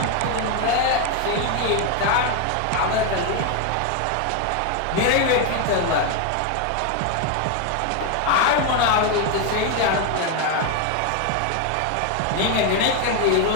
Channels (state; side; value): different; both; correlation 0.01